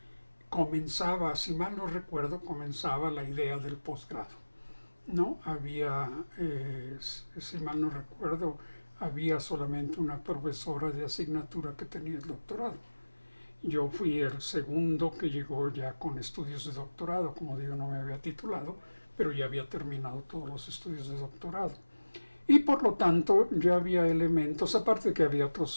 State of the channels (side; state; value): both; inverted; correlation -1.00